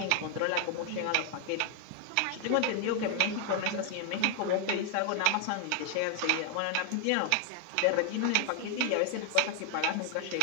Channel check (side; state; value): both; different; correlation 0.00